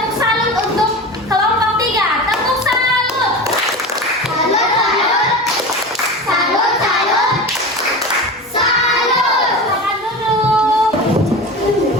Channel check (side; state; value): both; normal; correlation 0.29